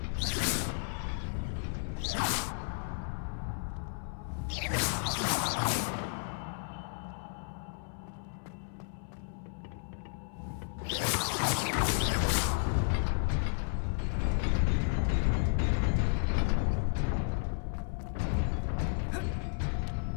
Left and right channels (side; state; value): right; silent; 56 dB below the other